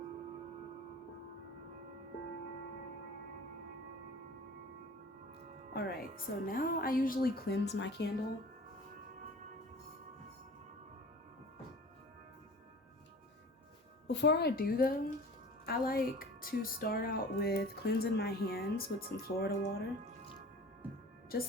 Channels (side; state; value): both; normal; correlation 0.42